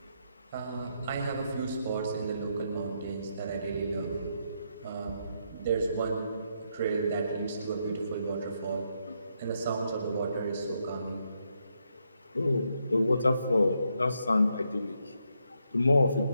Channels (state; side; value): inverted; both; correlation -0.78